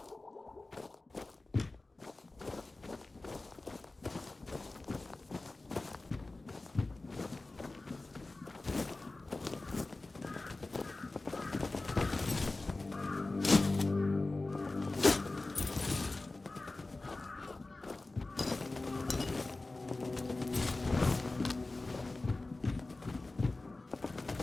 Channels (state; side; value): quieter; right; 3.1 dB